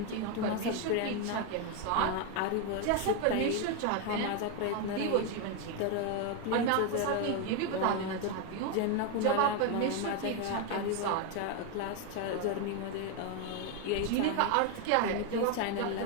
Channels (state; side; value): different; both; correlation 0.01